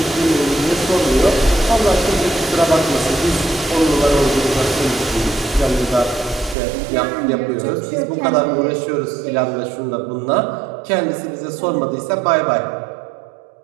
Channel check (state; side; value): drops out; left; at 6.6 s